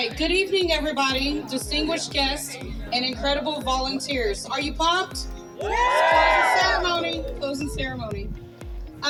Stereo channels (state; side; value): identical; both; correlation 1.00